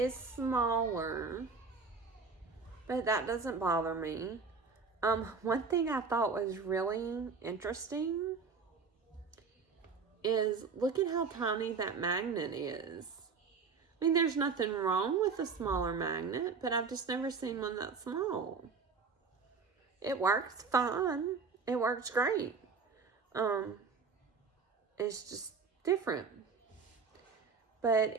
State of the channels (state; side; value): quieter; left; 5.0 dB